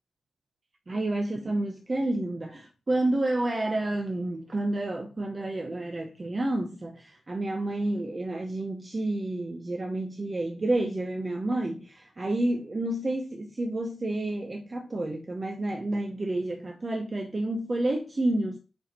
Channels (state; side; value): normal; both; correlation 0.94